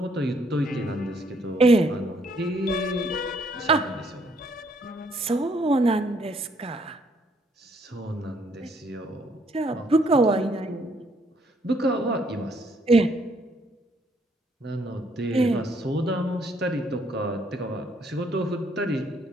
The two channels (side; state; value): both; normal; correlation 0.68